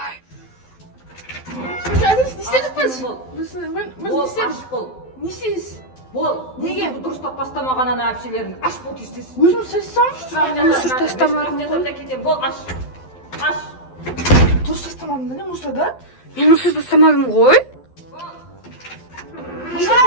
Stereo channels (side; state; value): right; late; 12 ms